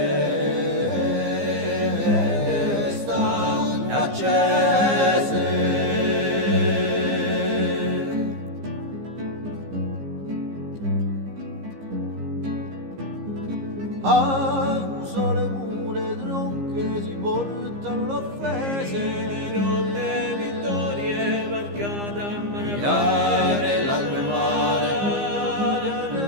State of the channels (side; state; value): left; late; 15 ms